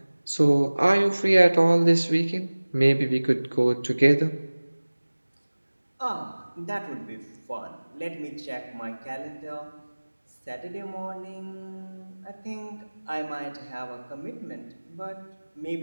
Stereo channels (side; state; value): both; inverted; correlation -1.00